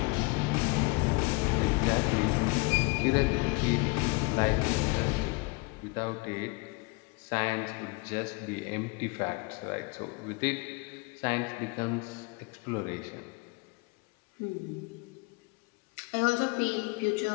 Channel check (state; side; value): quieter; right; 27.1 dB